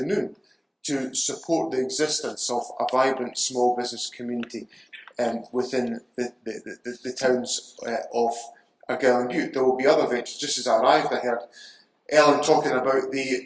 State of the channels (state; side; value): identical; both; correlation 1.00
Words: to support the existence of a vibrant small business community within the towns of Argyll and Bute. There will be other ventures. Just as I arrived, I heard Ellen talking about the